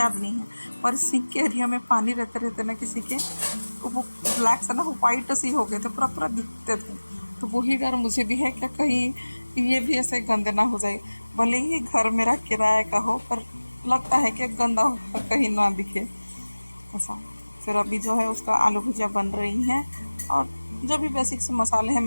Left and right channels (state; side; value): inverted; both; correlation -1.00